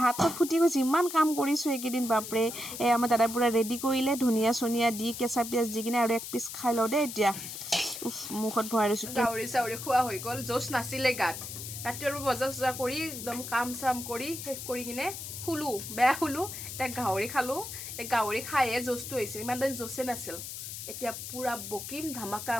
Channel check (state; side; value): noise; left; hiss, 8 dB below the sound